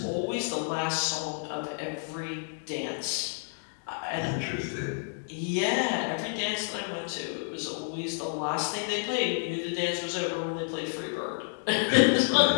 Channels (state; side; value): silent; right; digital silence